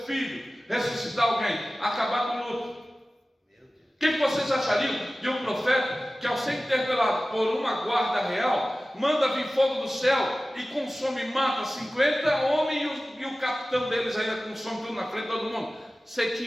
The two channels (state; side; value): normal; both; correlation 0.96